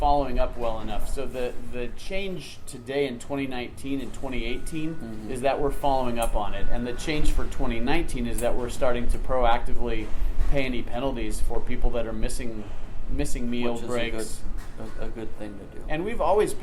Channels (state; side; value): identical; both; correlation 1.00